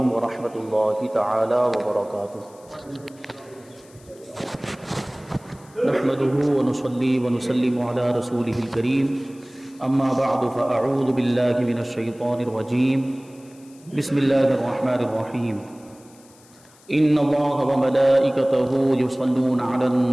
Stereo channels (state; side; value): noise; left; hiss, 27 dB below the sound